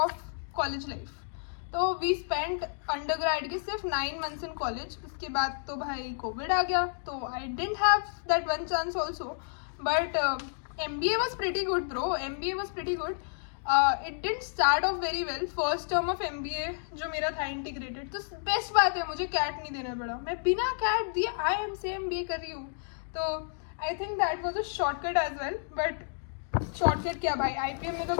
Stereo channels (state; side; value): silent; right; digital silence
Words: college life. तो वी स्पेंड अंडर ग्रेड के सिर्फ 9 months इन कॉलेज. उसके बाद तो भाई कोविड आ गया, तो I didn't have that one chance also. But MBA was pretty good bro, MBA was pretty good. It didn't start of very well. First term of MBA जो मेरा था integrated, तो बेस्ट बात है मुझे कैट नहीं देना पड़ा. मैं बिना कैट दिए IIM से MBA कर रही हूँ. तो I think that was a shortcut as well. But shortcut क्या भाई, IPM में तो